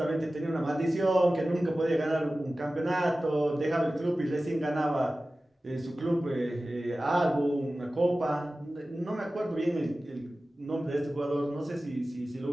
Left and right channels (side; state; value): both; normal; correlation 0.96